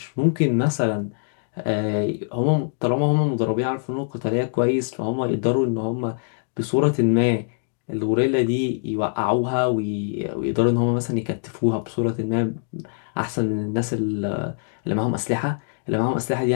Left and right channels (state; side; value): silent; right; digital silence